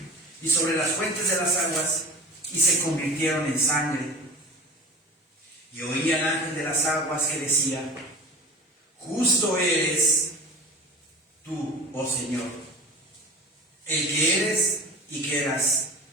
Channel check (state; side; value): normal; both; correlation 0.36